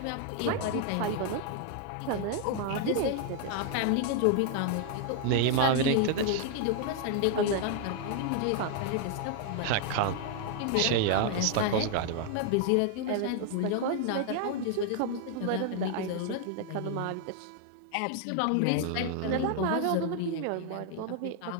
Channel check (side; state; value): both; different; correlation 0.00